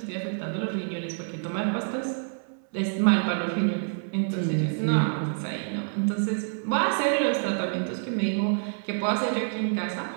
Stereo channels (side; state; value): left; silent; 60 dB below the other